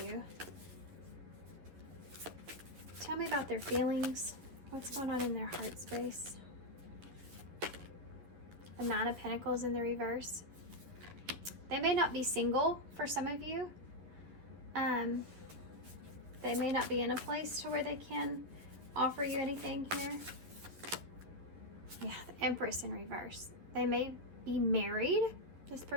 Tell me about their feelings. What's going on in their heart space? The 9 of Pentacles in the reverse. They may not be single for some of you. They may not be in a place to where they can offer you anything here. Yeah, the Empress in reverse. They may be married. This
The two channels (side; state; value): left; late; 11 ms